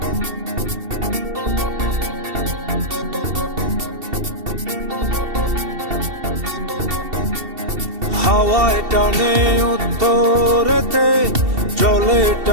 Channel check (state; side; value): late; left; 2.7 ms